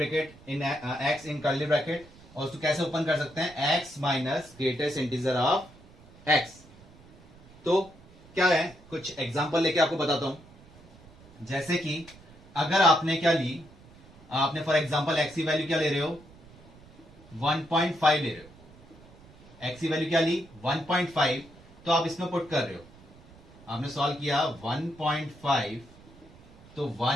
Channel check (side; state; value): right; noise; rumble, 23 dB below the sound